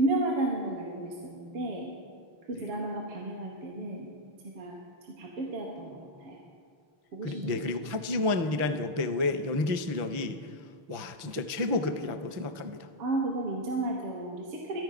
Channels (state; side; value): late; left; 6.0 ms